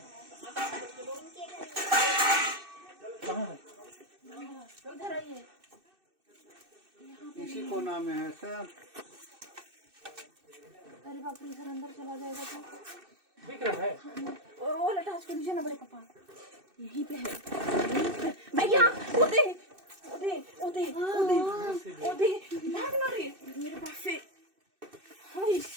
कहाँ है? उधर आइए। इसी कोना में है सर। अरे बाप रे, इधर अंदर चला जाएगा तो दिख रहा है? वो लटास को नीचे ना बड़े पापा, यहीं पे है, यहीं पे। भैया ओदे ओदे ओदे ओदे ओदे भाग ना रे मेरे पास से। हाय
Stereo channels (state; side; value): late; left; 2.6 ms